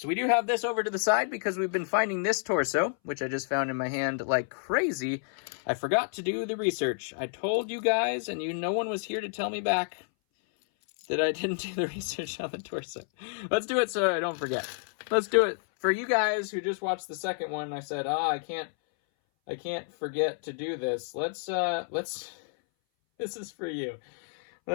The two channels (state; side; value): silent; right; 58 dB below the other